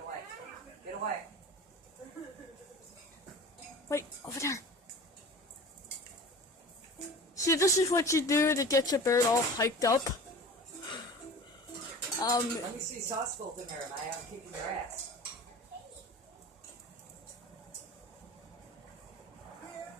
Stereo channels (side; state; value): both; normal; correlation 0.38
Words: away. Get away. Wait, over there. See, this is what you do to get your bird all hyped up. Let me see sauce both in there and I am kicking their ass.